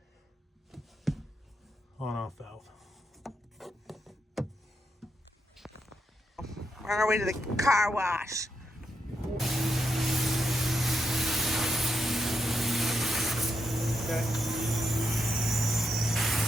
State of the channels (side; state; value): both; normal; correlation 0.83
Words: on-off valve. We're on our way to the car wash. Okay.